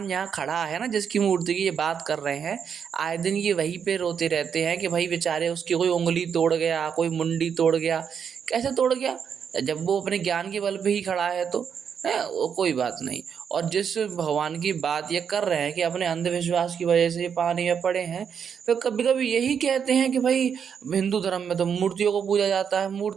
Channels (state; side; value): quieter; left; 7.3 dB